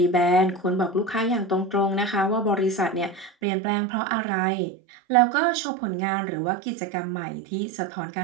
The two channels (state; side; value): drops out; left; at 3.3 s